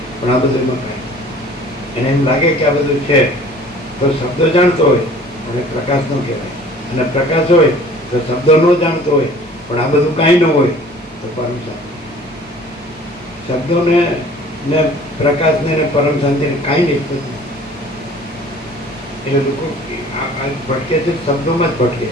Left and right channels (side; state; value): both; normal; correlation 0.49